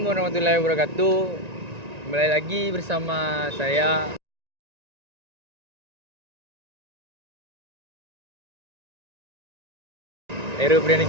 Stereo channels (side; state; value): left; late; 1.9 ms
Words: warahmatullahi wabarakatuh. Kembali lagi bersama saya Heru